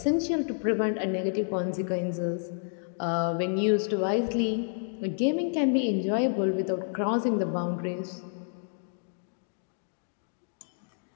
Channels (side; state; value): right; silent; digital silence